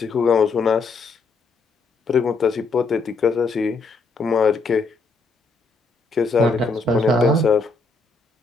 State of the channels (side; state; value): right; quieter; 3.9 dB